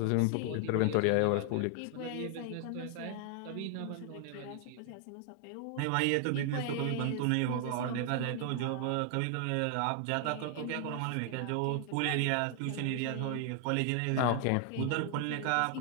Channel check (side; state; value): both; different; correlation 0.00